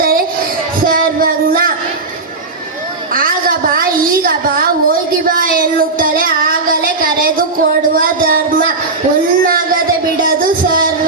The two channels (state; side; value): quieter; left; 3.7 dB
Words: ಸರ್ವಜ್ಞ. ಆಗ ಬಾ, ಈಗ ಬಾ, ಹೋಗಿ ಬಾ ಎನ್ನುತ್ತಲೇ ಆಗಲೇ ಕರೆದು ಕೊಡುವ ಧರ್ಮ. ಉನ್ನಗದೆ ಬಿಡದು